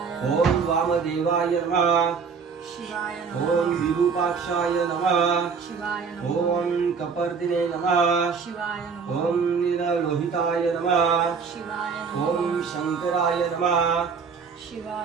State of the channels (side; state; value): left; quieter; 5.6 dB